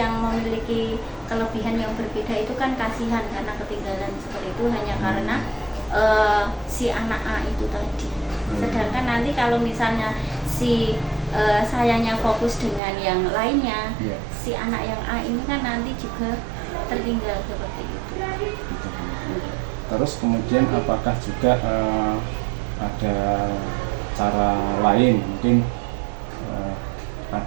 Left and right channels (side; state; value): left; drops out; at 12.8 s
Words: memiliki kelebihan yang berbeda itu kan kasihan karena ketinggalan seperti itu hanya karena si anak A itu tadi. Sedangkan nanti kalau misalnya si sayanya fokus dengan yang lainnya, si anak yang A ini kan nanti juga tertinggal seperti itu. Terus kemudian apakah juga ada cara lain mungkin